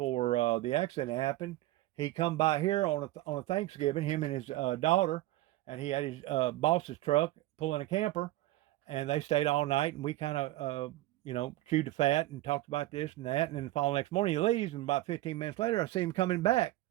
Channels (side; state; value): left; quieter; 16.8 dB